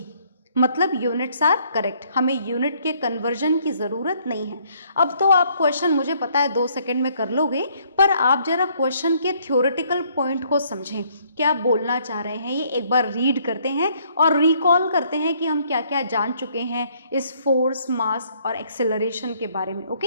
मतलब यूनिट्स आर करेक्ट, हमें यूनिट के कन्वर्जन की ज़रूरत नहीं है. अब तो आप क्वेश्चन मुझे पता है 2 सेकंड में कर लोगे, पर आप जरा क्वेश्चन के थ्योरेटिकल पॉइंट को समझें, क्या बोलना चाह रहे हैं. ये एक बार रीड करते हैं और रिकॉल करते हैं कि हम क्या क्या जान चुके हैं इस फोर्स, मास और एक्सेलरेशन के बारे में.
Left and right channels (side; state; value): both; inverted; correlation -0.66